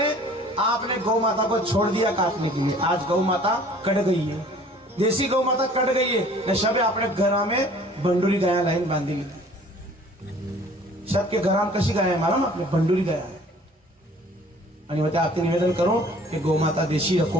आपने गौ माता को छोड़ दिया काटने के लिए। आज गौ माता कट गई है, देसी गौ माता कट गई है। न शबे अपने घर में बंडूरी गाया लाइन बांधी ली, सबके घरात कशी गाय आहे मालूम आपने, बंडूरी गाय आहे। आणि मैं आपसे निवेदन करूं कि गौ माता देशी रखो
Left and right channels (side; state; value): both; normal; correlation 0.52